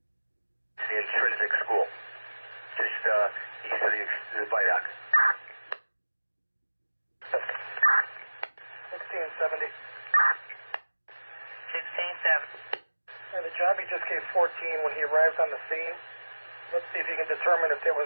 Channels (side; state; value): both; inverted; correlation -1.00